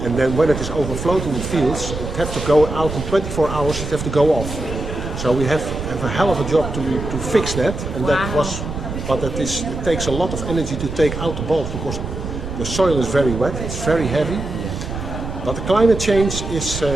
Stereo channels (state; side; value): noise; right; rumble, 7 dB below the sound